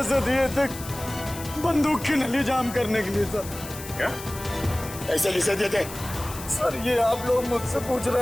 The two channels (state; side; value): noise; left; hiss, 13 dB below the sound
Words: दिए थे बंदूक की नली जाम करने के लिए सर। क्या? ऐसे किसे दिए थे? सर ये आप लोग मुझसे पूछ